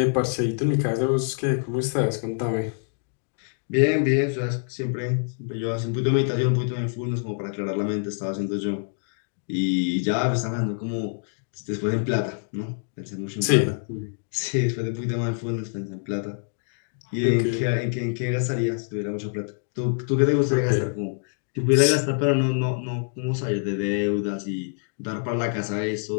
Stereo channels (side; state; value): right; silent; digital silence